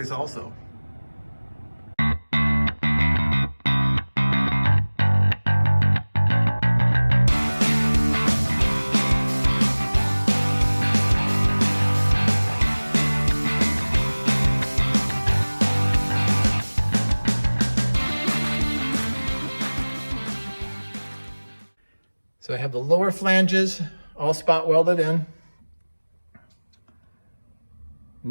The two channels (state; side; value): inverted; both; correlation -1.00